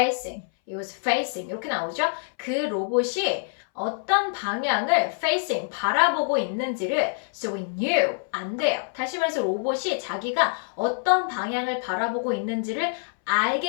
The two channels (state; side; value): silent; right; 60 dB below the other